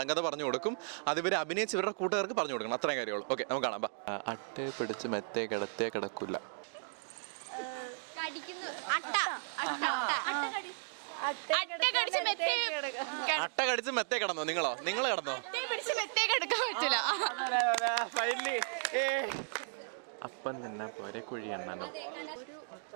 പറഞ്ഞു കൊടുക്കും, അത് ഇവർ അഭിനയിച്ച് ഇവരുടെ കൂട്ടുകാർക്ക് പറഞ്ഞു കൊടുക്കണം. അത്രയും കാര്യമുള്ളൂ. ഓക്കെ, നമുക്ക് കാണാം. അട്ടേ പിടിച്ച് മെത്തേ കിടത്തേ കിടക്കില്ല. അട്ട കടിച്ച് മെത്തേ കിടന്നോ? നിങ്ങൾ കിടന്നോ? അപ്പം തന്നെ പോരെ കുഴി എണ്ണനോ?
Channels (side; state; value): left; silent; digital silence